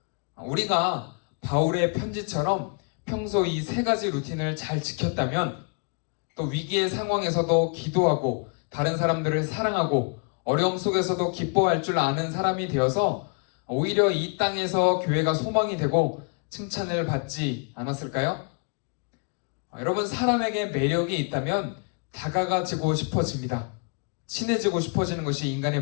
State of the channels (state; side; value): quieter; right; 37.2 dB